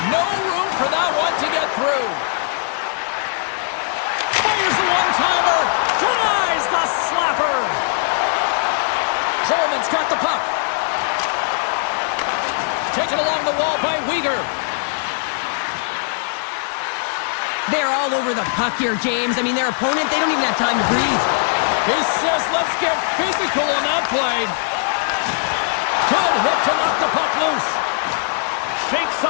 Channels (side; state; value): right; silent; 55 dB below the other